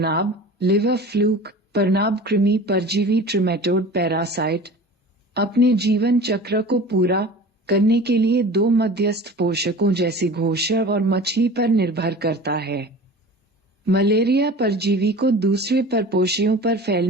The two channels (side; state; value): both; normal; correlation 0.38